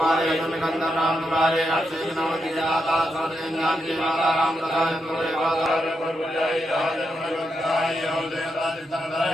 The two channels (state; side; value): normal; both; correlation 0.83